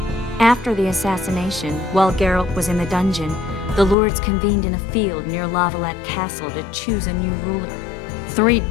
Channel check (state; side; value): drops out; right; at 4.0 s